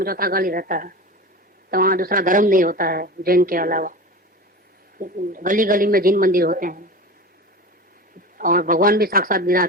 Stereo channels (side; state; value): both; normal; correlation 0.31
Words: चौथा काल ही रहता है, तो वहाँ दूसरा धर्म नहीं होता है जैन के अलावा। गली गली में जिन मंदिर होते हैं, और भगवान भी साक्षात